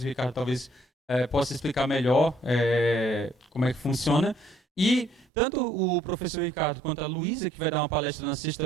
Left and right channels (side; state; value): left; drops out; at 5.2 s